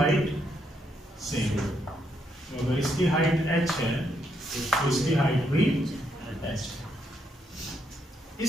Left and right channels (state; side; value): normal; both; correlation 0.77